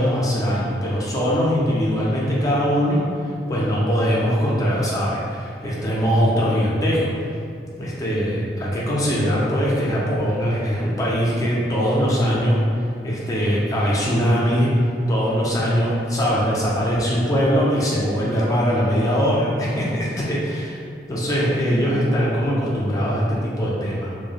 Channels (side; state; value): both; normal; correlation 0.70